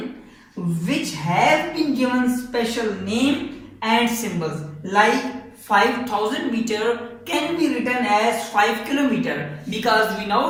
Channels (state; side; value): identical; both; correlation 1.00